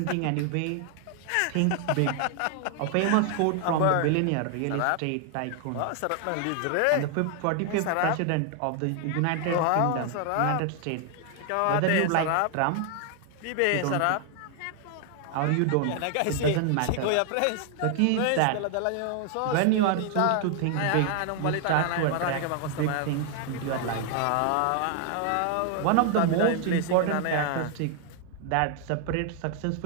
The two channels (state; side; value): different; both; correlation 0.00